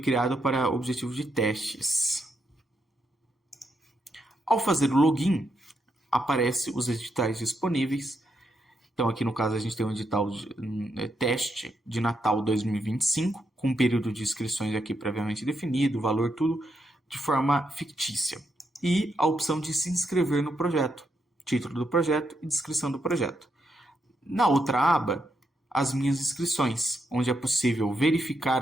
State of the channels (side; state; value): both; normal; correlation 0.81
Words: para objetivo de testes. Ao fazer o login, aparece os editais disponíveis. Então aqui no caso a gente tem um edital teste de Natal 2025, com um período de inscrições aqui previamente definido, valor tudo de forma fictícia. E a opção de se inscrever no projeto, título do projeto e descrição do projeto. Na outra aba, as minhas inscrições, onde é possível